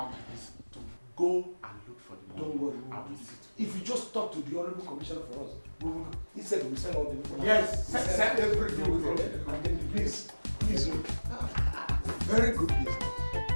is to go and look for the money. Don't worry. I will sit. If you just talk to the Honorable Commissioner for us, he said we'll send all the information. Yes, send everything with it. And then please look. Very good business.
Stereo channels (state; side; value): inverted; both; correlation -1.00